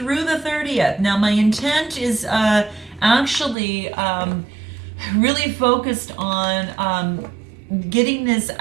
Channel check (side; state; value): left; drops out; at 3.6 s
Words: the 30th. Now my intent is actually really focused on getting this